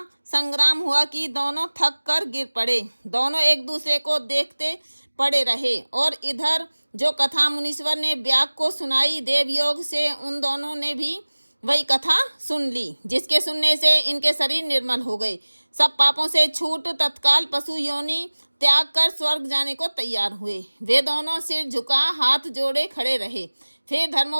संग्राम हुआ कि दोनों थक कर गिर पड़े। दोनों एक दूसरे को देखते पड़े रहे और इधर जो कथा मुनीश्वर ने व्याघ्र को सुनाई, देवयोग से उन दोनों ने भी वही कथा सुन ली, जिसके सुनने से इनके शरीर निर्मल हो गए। सब पापों से छूट तत्काल पशु योनि त्याग कर स्वर्ग जाने को तैयार हुए। वे दोनों सिर झुका हाथ जोड़े खड़े रहे। फिर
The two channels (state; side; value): inverted; both; correlation -1.00